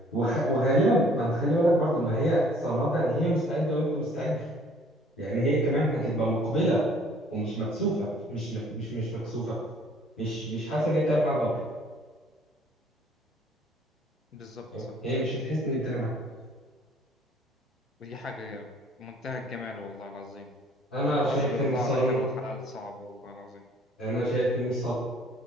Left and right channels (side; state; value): both; normal; correlation 0.56